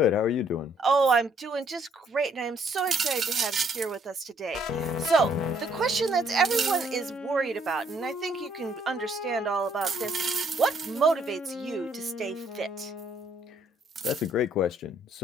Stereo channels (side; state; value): both; normal; correlation 0.67